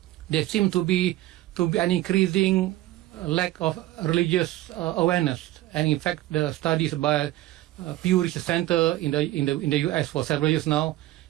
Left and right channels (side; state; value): left; quieter; 15.9 dB